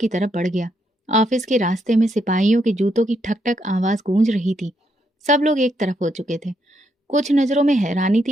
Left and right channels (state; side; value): normal; both; correlation 0.77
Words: तरफ बढ़ गया। ऑफिस के रास्ते में सिपाहियों के जूतों की ठक ठक आवाज गूंज रही थी। सब लोग एक तरफ हो चुके थे। कुछ नजरों में हैरानी